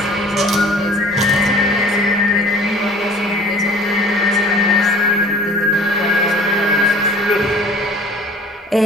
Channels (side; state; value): both; normal; correlation 0.48